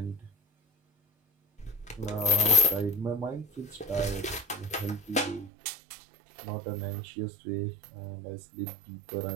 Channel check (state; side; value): drops out; left; at 5.5 s